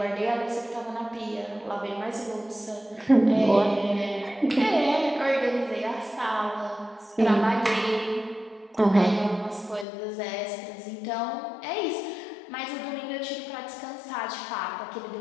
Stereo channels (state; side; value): drops out; right; at 9.9 s